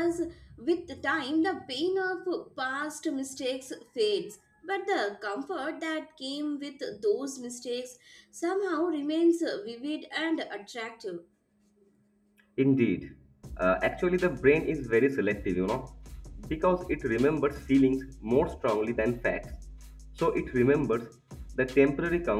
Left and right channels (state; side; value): identical; both; correlation 1.00